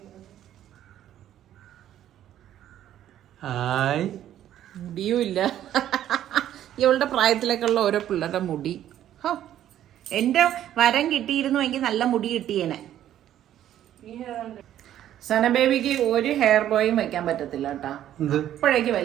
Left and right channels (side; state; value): left; quieter; 11.6 dB